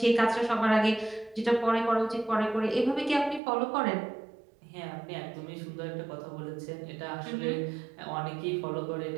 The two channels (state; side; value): drops out; left; at 3.4 s